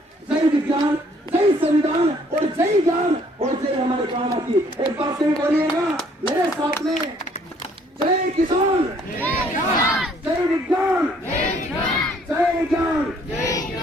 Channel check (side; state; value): both; normal; correlation 0.62